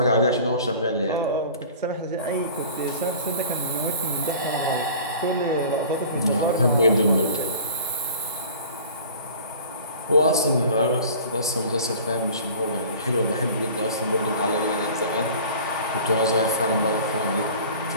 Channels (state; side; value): inverted; both; correlation -0.43